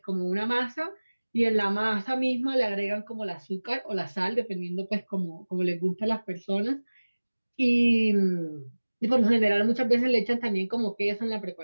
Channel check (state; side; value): inverted; both; correlation -1.00